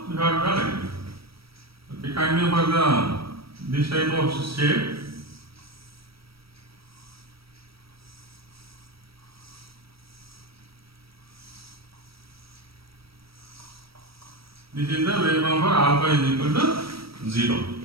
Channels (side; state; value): left; late; 0.75 ms